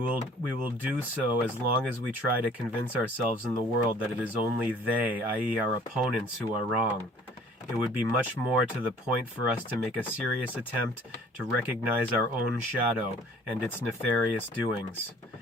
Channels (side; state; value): both; normal; correlation 0.53